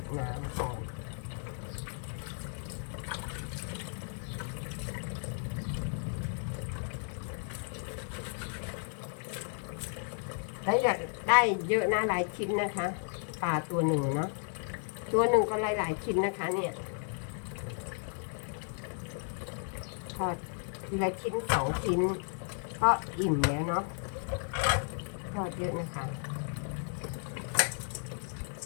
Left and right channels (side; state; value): right; silent; 55 dB below the other